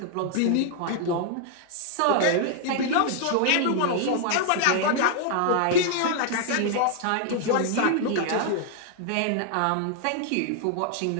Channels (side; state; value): both; different; correlation 0.00